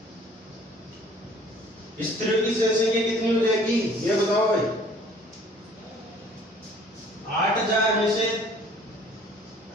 स्त्रियों की जनसंख्या कितनी हो जाएगी? ये बताओ भाई। 8000 में से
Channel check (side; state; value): both; normal; correlation 0.54